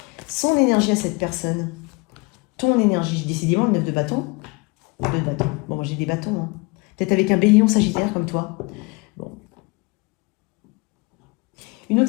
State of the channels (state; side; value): quieter; right; 27.3 dB